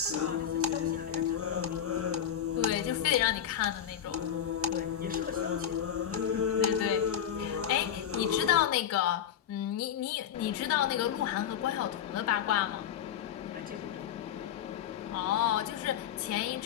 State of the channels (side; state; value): right; quieter; 9.3 dB